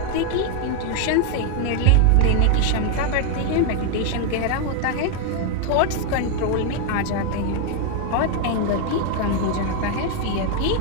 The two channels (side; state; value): both; different; correlation 0.00